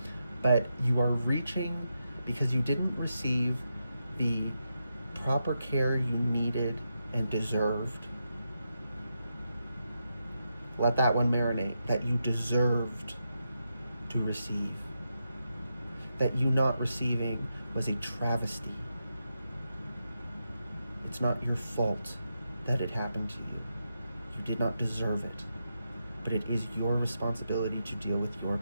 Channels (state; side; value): inverted; both; correlation -0.86